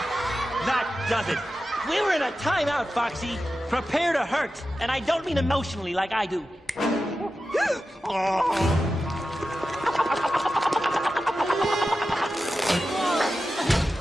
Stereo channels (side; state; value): both; normal; correlation 0.92